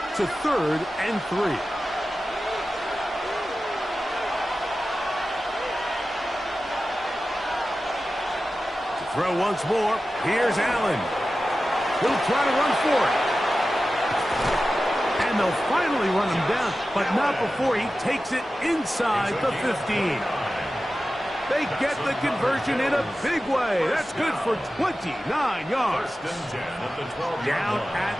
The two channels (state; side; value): normal; both; correlation 0.94